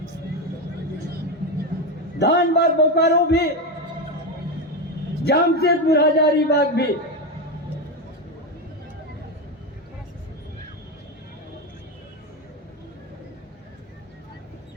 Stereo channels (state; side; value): normal; both; correlation 0.13